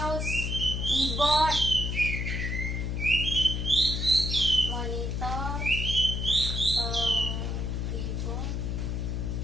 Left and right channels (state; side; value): noise; left; hum, 1 dB below the sound